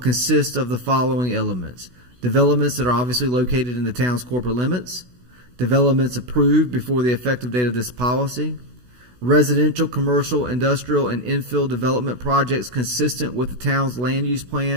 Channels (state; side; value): late; left; 16 ms